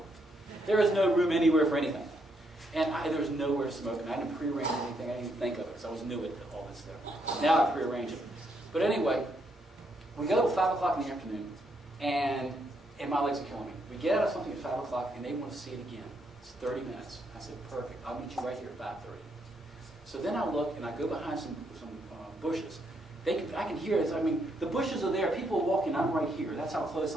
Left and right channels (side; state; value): both; normal; correlation 0.76